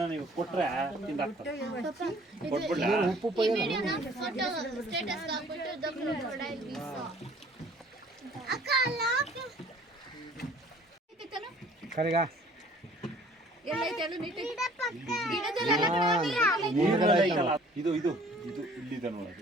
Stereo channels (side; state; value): both; normal; correlation 0.54